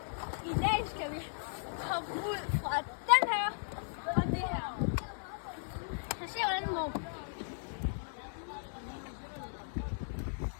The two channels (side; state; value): right; silent; digital silence